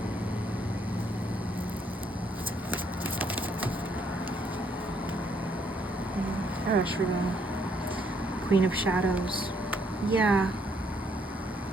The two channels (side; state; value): both; normal; correlation 0.70